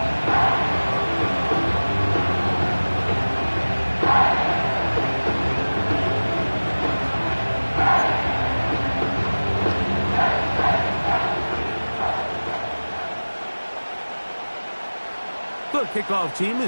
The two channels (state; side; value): inverted; both; correlation -1.00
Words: The kickoff team